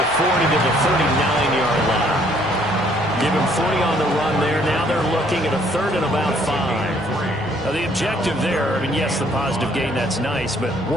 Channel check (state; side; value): normal; both; correlation 0.64